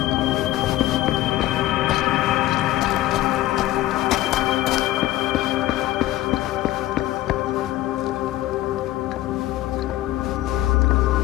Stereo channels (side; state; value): right; quieter; 15.5 dB